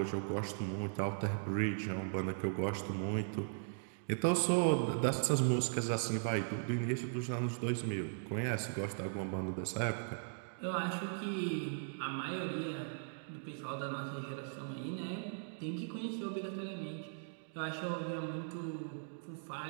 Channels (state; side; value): silent; left; digital silence